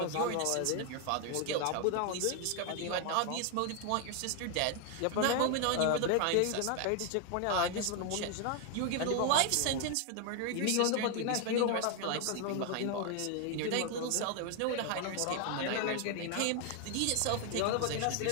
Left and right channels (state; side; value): different; both; correlation 0.01